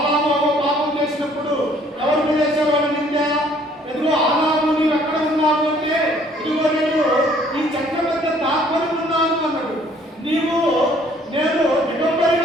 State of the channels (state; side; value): normal; both; correlation 0.59